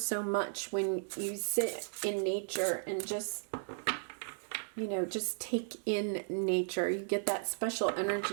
much when you sit in nature and just, you know, just take in nature. You get that special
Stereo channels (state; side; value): silent; left; digital silence